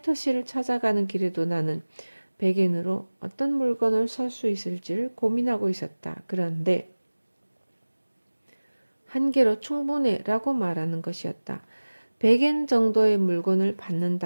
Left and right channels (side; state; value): both; inverted; correlation -1.00